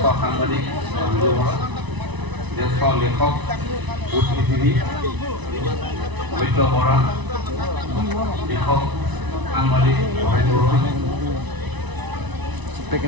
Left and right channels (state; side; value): late; left; 1.0 ms